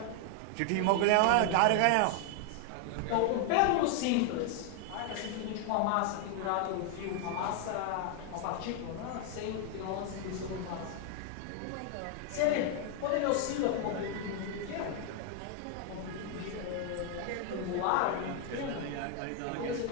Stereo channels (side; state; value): both; different; correlation 0.00